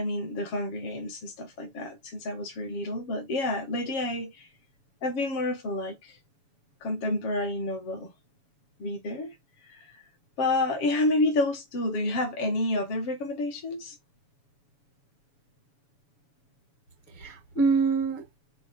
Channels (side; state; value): right; late; 7.1 ms